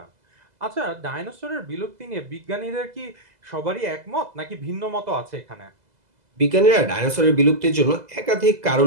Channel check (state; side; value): late; left; 2.0 ms